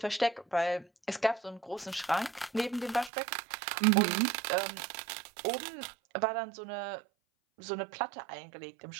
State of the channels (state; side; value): drops out; left; at 3.1 s